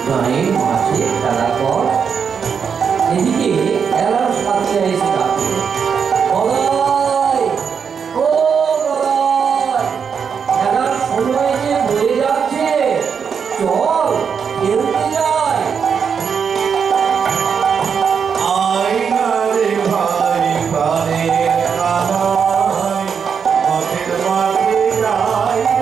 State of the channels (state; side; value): quieter; left; 6.6 dB